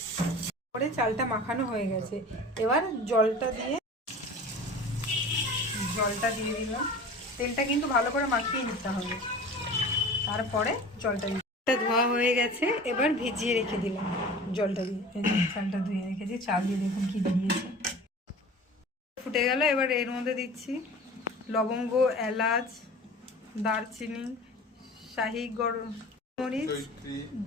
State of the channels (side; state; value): both; normal; correlation 0.39